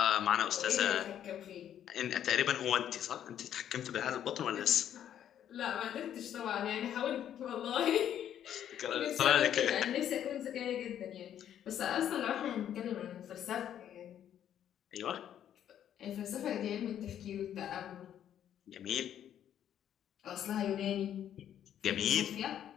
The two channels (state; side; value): quieter; right; 10.2 dB